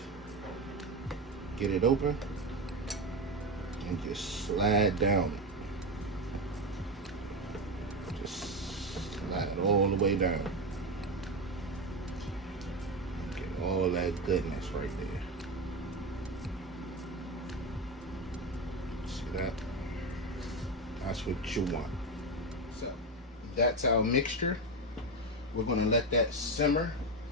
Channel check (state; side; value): normal; both; correlation 0.15